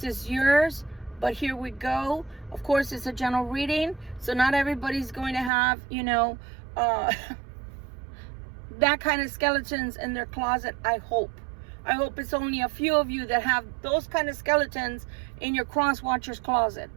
is yours, but here we go. Of course, it's a general reading, so not everybody's going to have, you know, that kind of skeletons in their closet. I hope it's only a few of you that have those kind of skeletons in your cross watcher's closet.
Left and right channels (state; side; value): drops out; left; at 5.5 s